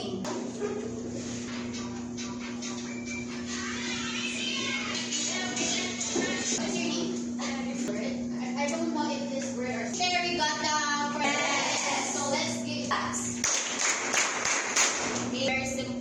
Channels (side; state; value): both; identical; correlation 1.00